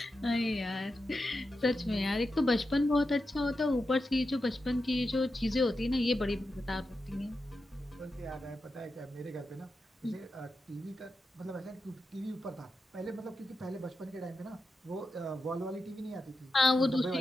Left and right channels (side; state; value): both; normal; correlation 0.89